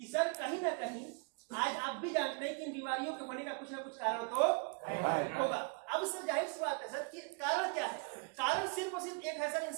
सर कहीं ना कहीं आज आप भी जानते हैं कि इन बीमारियों के होने का कुछ ना कुछ कारण तो होगा। अब सर जाहिर सी बात है सर कि कारण क्या है, कारण सिर्फ और सिर्फ एक है सर,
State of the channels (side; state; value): left; quieter; 35.7 dB